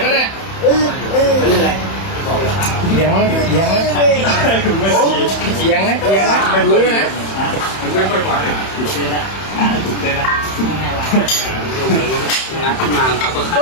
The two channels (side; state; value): right; late; 31 ms